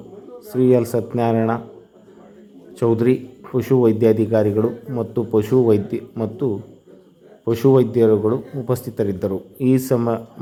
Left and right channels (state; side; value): identical; both; correlation 1.00